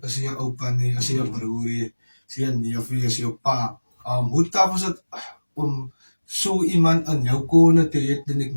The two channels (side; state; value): both; inverted; correlation -1.00